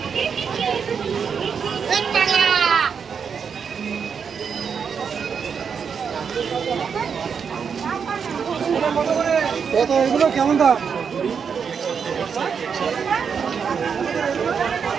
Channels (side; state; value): left; quieter; 6.5 dB